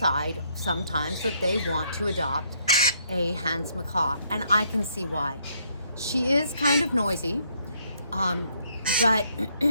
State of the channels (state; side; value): inverted; both; correlation -0.71